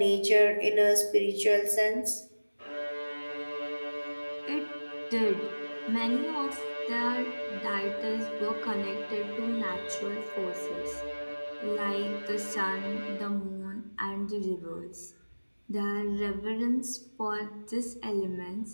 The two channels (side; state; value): both; inverted; correlation -1.00